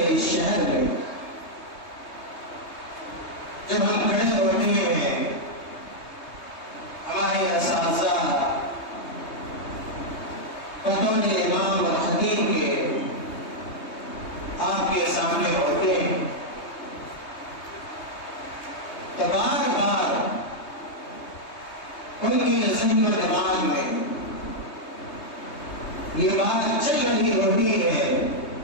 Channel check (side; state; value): right; late; 3.2 ms